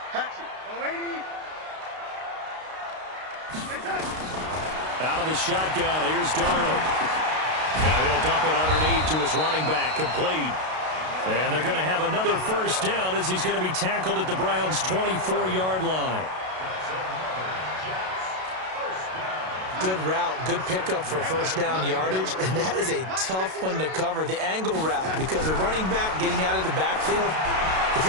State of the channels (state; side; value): late; left; 32 ms